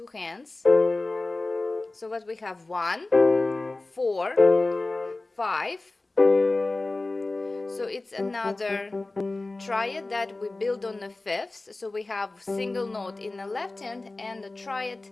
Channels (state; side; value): quieter; right; 3.1 dB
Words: hands. So what we have 1 4 5. So it's another triad that we build on the 5th. So we have single note in the left hand and a triad